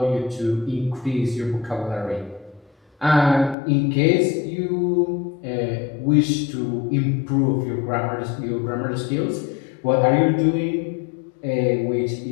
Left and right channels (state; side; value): drops out; right; at 3.6 s